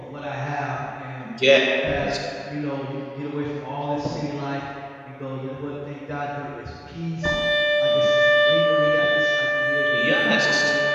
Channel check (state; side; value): identical; both; correlation 1.00